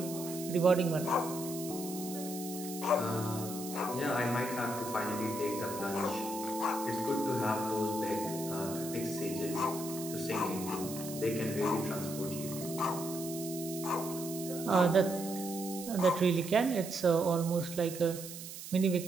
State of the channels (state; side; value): noise; right; hiss, 11 dB below the sound